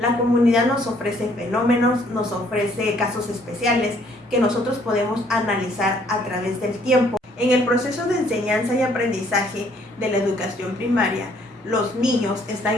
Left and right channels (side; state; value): both; normal; correlation 0.63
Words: comunidad nos ofrece fenómenos, nos ofrece casos especiales que nosotros podemos analizar a través del tiempo. En el proceso de enseñanza y aprendizaje de la educación primaria, los niños